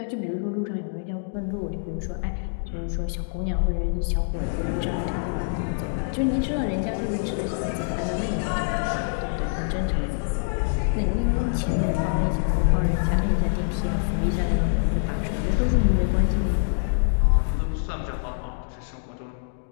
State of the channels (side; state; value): right; silent; digital silence